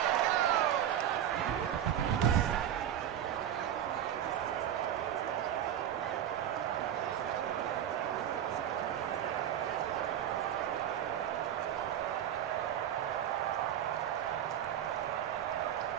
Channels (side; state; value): left; quieter; 10.3 dB